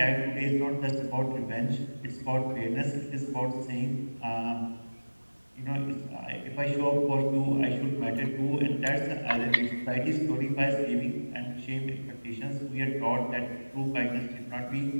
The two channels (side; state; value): both; inverted; correlation -1.00